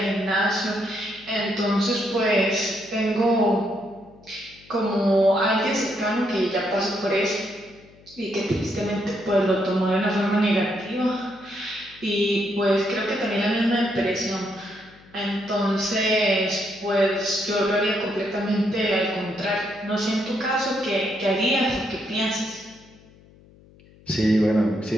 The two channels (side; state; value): left; noise; hum, 26 dB below the sound